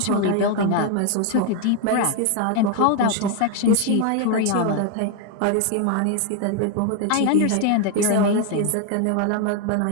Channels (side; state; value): both; different; correlation 0.01